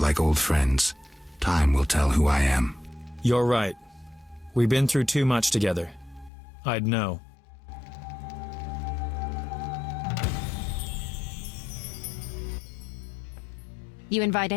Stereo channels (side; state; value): right; drops out; at 6.3 s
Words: old friends. Time will tell who I am. You're right. We've been through too much together. I'd know. You invite